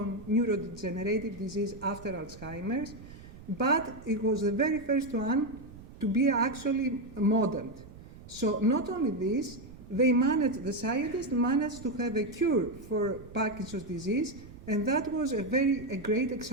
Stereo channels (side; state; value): right; noise; rumble, 17 dB below the sound